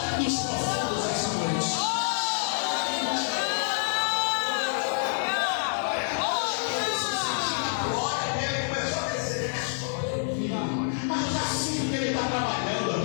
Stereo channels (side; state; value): right; silent; digital silence